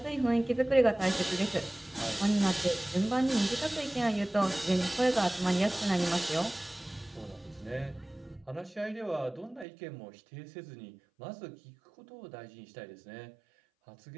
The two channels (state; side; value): drops out; left; at 9.7 s